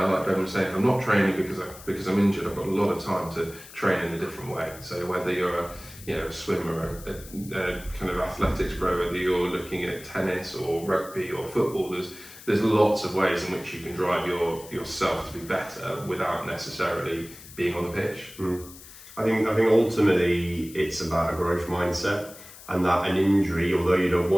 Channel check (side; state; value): left; noise; hiss, 18 dB below the sound